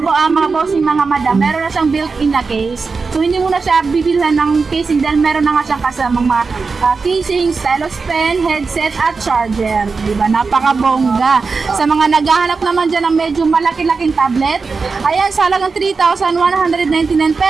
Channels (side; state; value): left; quieter; 4.6 dB